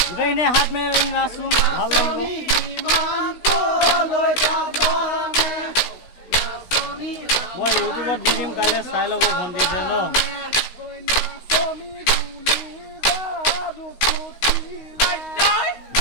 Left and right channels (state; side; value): late; right; 16 ms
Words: গোটেইখিনি হাত মেলি নাচোন ভাল লাগিব মই ইউটিউবত দি দিম কাইলৈ চাই ল'ব ভণ্টিছে ন